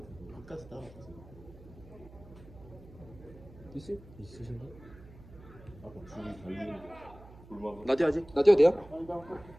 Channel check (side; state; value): right; noise; hum, 20 dB below the sound